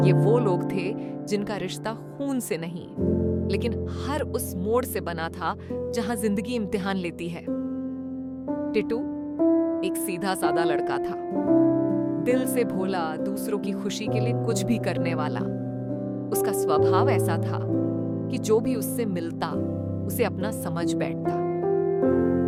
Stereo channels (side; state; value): both; identical; correlation 1.00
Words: ये वो लोग थे जिनका रिश्ता खून से नहीं, लेकिन हर उस मोड़ से बना था जहां जिंदगी इम्तिहान लेती है। टिटू एक सीधा सादा लड़का था, दिल से भोला, दूसरों की खुशी के लिए कुछ भी करने वाला। उसका स्वभाव ऐसा था कि जो भी उससे मिलता उसे अपना समझ बैठता।